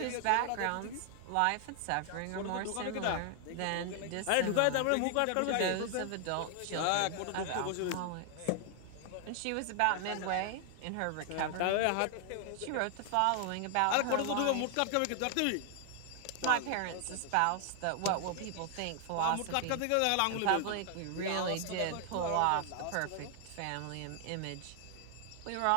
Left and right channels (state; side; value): different; both; correlation 0.00